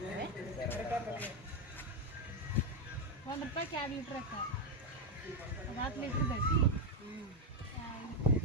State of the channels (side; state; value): both; normal; correlation 0.05